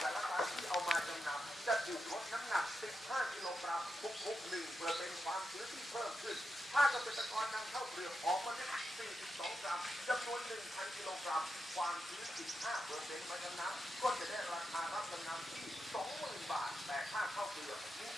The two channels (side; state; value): both; normal; correlation 0.87